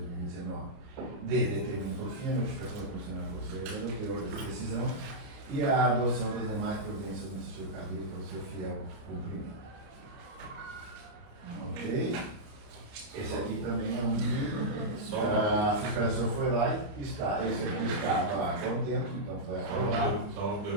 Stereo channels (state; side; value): late; left; 29 ms